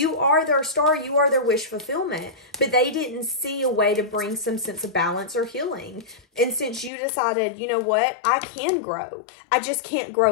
are their star. You are their wish fulfillment. But they didn't see a way to bring some sense of balance or healing. And since you decided, you know what? I can grow. I just can't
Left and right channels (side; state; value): right; drops out; at 6.9 s